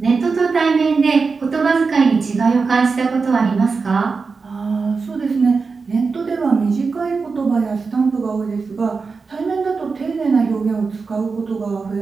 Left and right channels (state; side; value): quieter; left; 4.7 dB